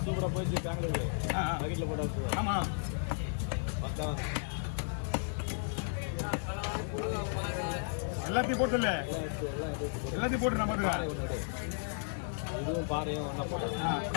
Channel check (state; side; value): silent; right; digital silence